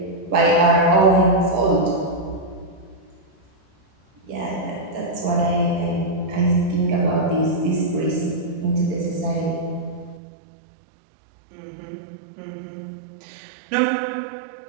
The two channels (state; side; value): drops out; left; at 10.2 s